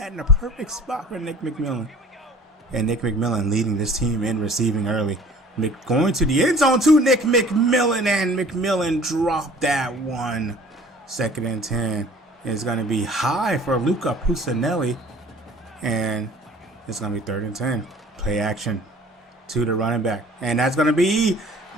in a perfect spot for Nick McMillan. And Nick McMillan leading this team in receiving early. Going to the end zone to Nick McMillan. And McMillan dropped that one. 2nd and 10 is going to be high for Luca Pusinelli. And it's going to be 3rd and 10. Play action to the running back. And that's going to be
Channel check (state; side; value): normal; both; correlation 0.49